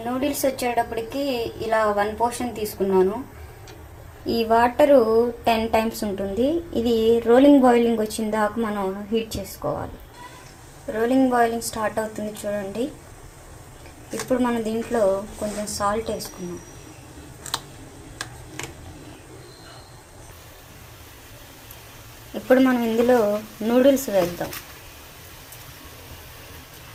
నూడిల్స్ వచ్చేటప్పటికి ఇలా 1 పోర్షన్ తీసుకున్నాను. ఈ వాటరు 10 టైమ్స్ ఉంటుంది. ఇది రోలింగ్ బాయిలింగ్ వచ్చిన దాకా మనం హీట్ చేసుకోవాలి. రోలింగ్ బాయిలింగ్ స్టార్ట్ అవుతుంది చూడండి. ఇప్పుడు మనం దీంట్లో కొంచెం సాల్ట్ వేసుకున్నాం. ఇప్పుడు మనం ఇందులో నూడిల్స్ వేద్దాం.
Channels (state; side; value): identical; both; correlation 1.00